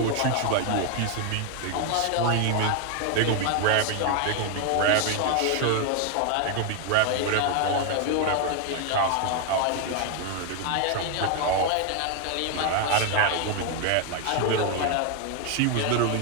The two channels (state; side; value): different; both; correlation 0.00